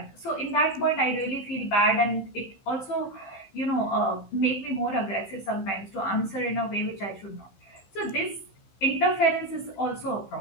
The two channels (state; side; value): late; right; 15 ms